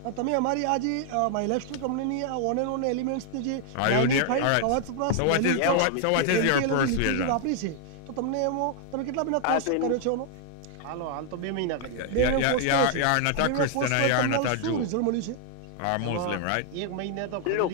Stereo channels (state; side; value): different; both; correlation 0.00